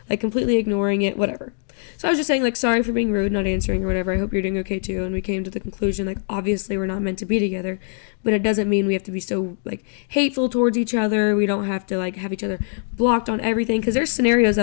like, completely ignoring it, whatever. So I was just saying, like, sorry for being rude, not answering or whatever. I hope you're doing okay, too. And we came to the conclusion, like, obviously we're not meant to be together, but it doesn't mean we have to be so, like, hateful towards each other. We don't have to, like, have each other blocked on everything. Because there's scenarios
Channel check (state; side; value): silent; right; 64 dB below the other